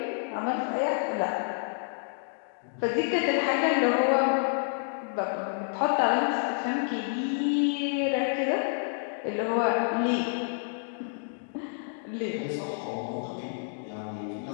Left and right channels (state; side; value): silent; right; digital silence